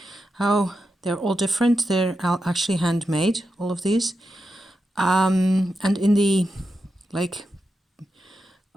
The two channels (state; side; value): normal; both; correlation 0.88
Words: how they're all different? They're actually handmade, all of these. And in the